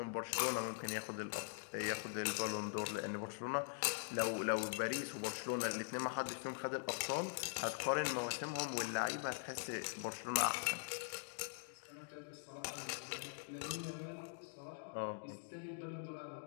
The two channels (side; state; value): right; silent; digital silence